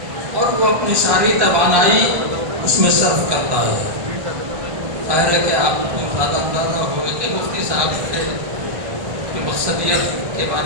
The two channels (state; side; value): late; left; 1.1 ms